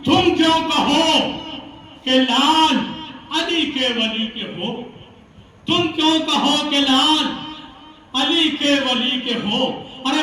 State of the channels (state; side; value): identical; both; correlation 1.00